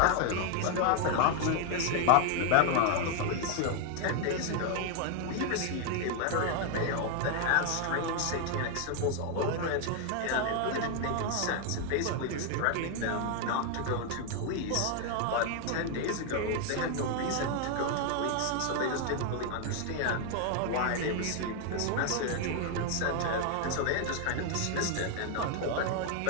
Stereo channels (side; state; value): both; different; correlation 0.00